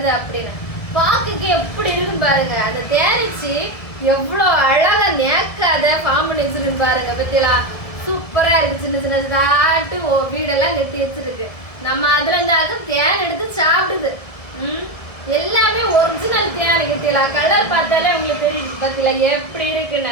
அப்படின்னு. பாக்குக்கு எப்படி இருக்கும் பாருங்க. அந்த தேனிச்சு எவ்வளவு அழகா நேக்காத ஃபார்ம் பண்ணி வச்சிருக்கு பாருங்க. பத்தியா சூப்பரா இருக்கு. சின்ன சின்ன தாட்டு வீடெல்லாம் கட்டி வச்சிருக்கு. நம்ம அதுல இருந்தாலும் தேன் எடுத்து சாப்பிடுது. எல்லாமே ஒரிஜினல் தேன் கிட்டல. கலர் பார்த்தாலே உங்களுக்கு தெரியும் பத்தில எப்படி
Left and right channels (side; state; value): right; late; 1.7 ms